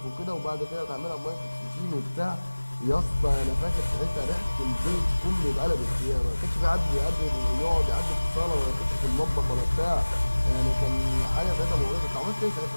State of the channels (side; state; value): both; inverted; correlation -1.00